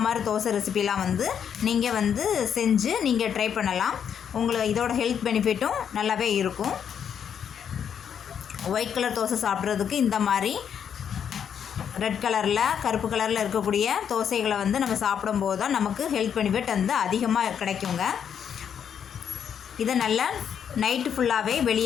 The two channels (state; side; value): quieter; right; 8.1 dB